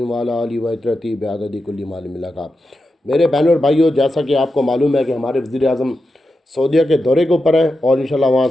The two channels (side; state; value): both; normal; correlation 0.89